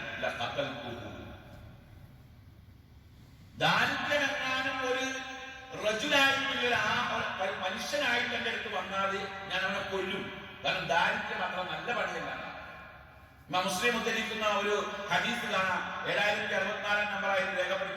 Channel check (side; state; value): both; identical; correlation 1.00